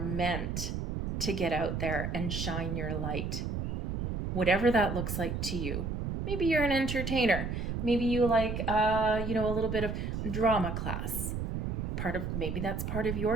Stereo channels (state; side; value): noise; right; rumble, 2 dB below the sound